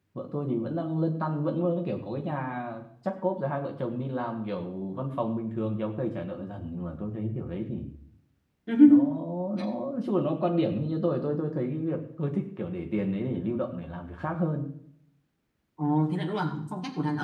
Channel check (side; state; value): both; identical; correlation 1.00